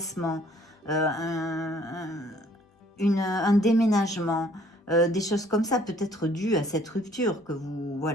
un déménagement, des choses comme ça, peut-être dues à cette rupture que vous...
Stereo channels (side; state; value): both; normal; correlation 0.60